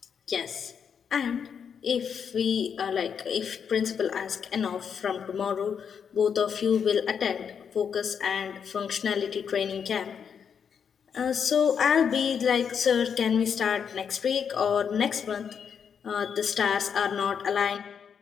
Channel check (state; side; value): quieter; right; 7.2 dB